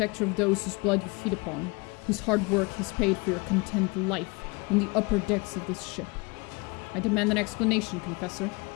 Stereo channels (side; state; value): right; quieter; 27.7 dB